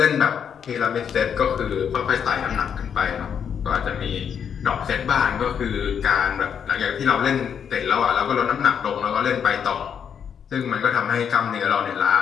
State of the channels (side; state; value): right; quieter; 7.7 dB